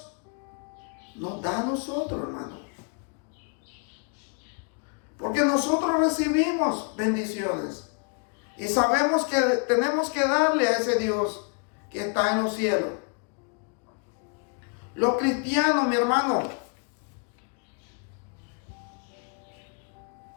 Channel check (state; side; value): quieter; right; 37.9 dB